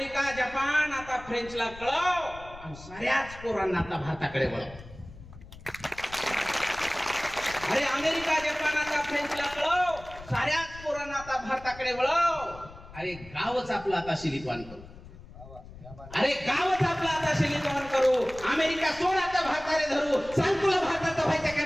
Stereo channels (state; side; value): noise; left; rumble, 17 dB below the sound